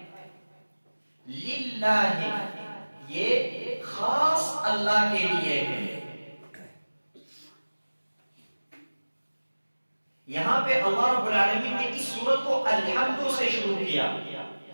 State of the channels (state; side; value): inverted; both; correlation -1.00